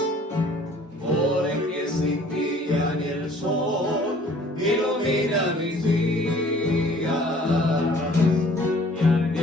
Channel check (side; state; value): both; normal; correlation 0.54